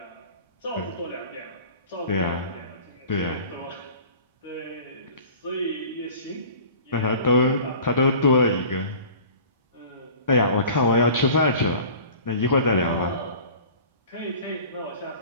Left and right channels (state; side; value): inverted; both; correlation -0.43